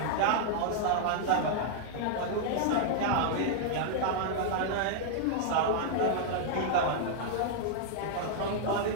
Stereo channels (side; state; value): both; different; correlation -0.01